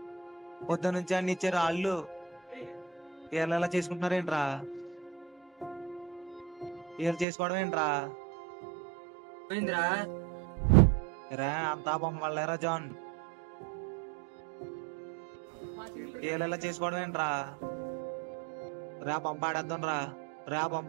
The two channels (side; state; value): left; drops out; at 7.2 s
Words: పొద్దు నుంచి అన్ని ఇచ్చారు, వాళ్ళు వీళ్ళు ఎలా చేసుకుంటున్నారేంట్రా? వీళ్ళు చేసుకోవడం ఏంట్రా? రా అంతా బొమ్మలేరా జాన్, వీళ్ళు ఎలా చేసుకోవడం ఏంట్రా? రా పంపాడేద్దాం రా